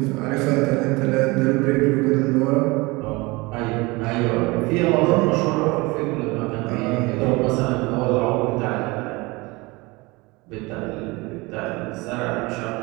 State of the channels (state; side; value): quieter; left; 24.1 dB